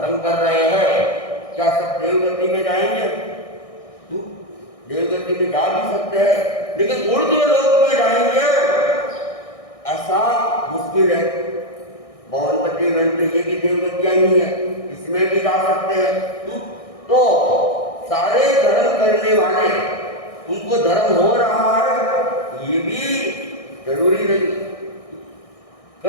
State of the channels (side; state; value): right; late; 1.6 ms